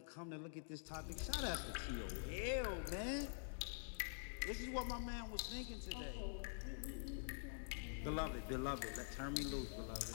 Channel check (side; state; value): right; silent; digital silence